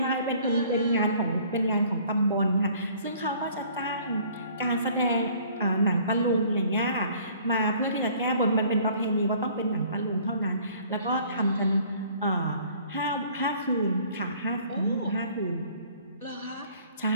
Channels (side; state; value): both; inverted; correlation -0.55